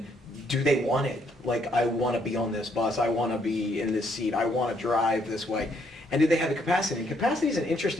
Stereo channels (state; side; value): normal; both; correlation 0.70